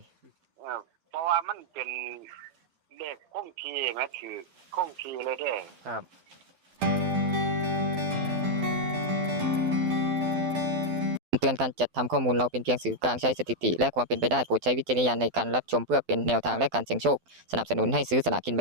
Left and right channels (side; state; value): left; late; 12 ms